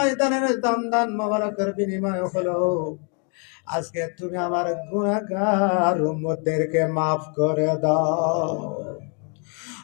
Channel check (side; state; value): right; quieter; 36.5 dB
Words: দন্দান মোবারকের বিনিময় হলো আজকে তুমি আমার গুনাহগার উম্মতদেরকে maaf করে দাও।